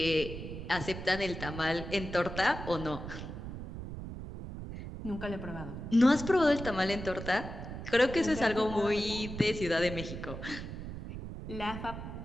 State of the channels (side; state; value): right; noise; rumble, 8 dB below the sound